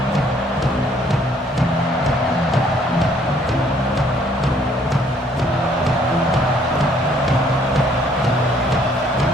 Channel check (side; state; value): both; normal; correlation 0.63